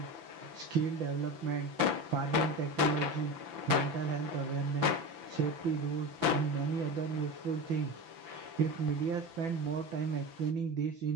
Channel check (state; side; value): late; left; 6.0 ms